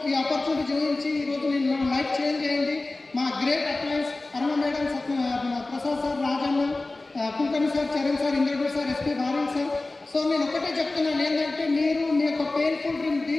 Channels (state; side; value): quieter; right; 3.1 dB